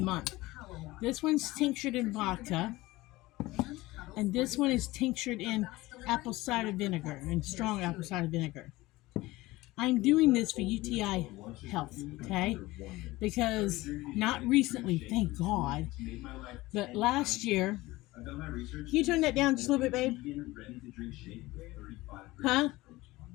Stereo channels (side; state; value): right; quieter; 19.3 dB